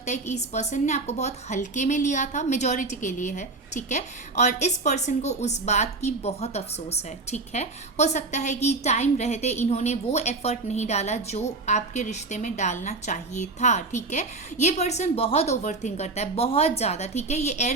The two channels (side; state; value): left; quieter; 3.5 dB